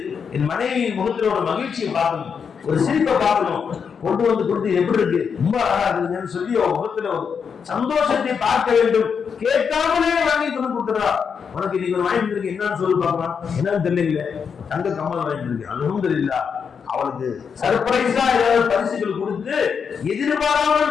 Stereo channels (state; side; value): quieter; right; 6.5 dB